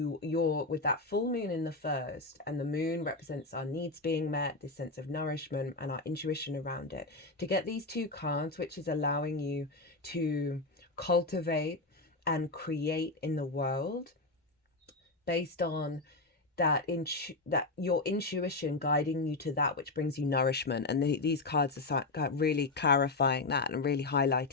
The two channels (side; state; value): right; quieter; 3.3 dB